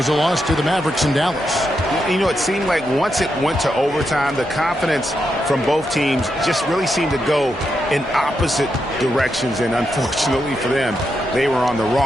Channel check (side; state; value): both; normal; correlation 0.84